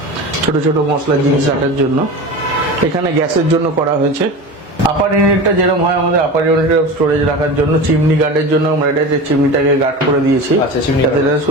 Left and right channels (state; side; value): normal; both; correlation 0.30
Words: ছোট ছোট মশলার জিনিস রাখার জন্য। এখানে গ্যাসের জন্য করা হয়েছে। আপার ইউনিটটা যেরকম হয় আমাদের আপার ইউনিটের স্টোরেজ রাখার জন্য, চিমনি গার্ডের জন্য আমরা এটা চিমনিটাকে গার্ড করে দিয়েছি, যাতে এটা